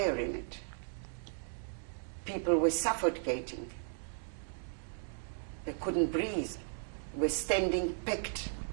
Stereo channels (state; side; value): silent; left; 54 dB below the other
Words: in it. People were suffocating. They couldn't breathe. Were standing packed,